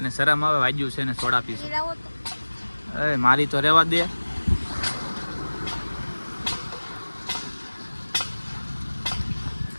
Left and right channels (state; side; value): inverted; both; correlation -1.00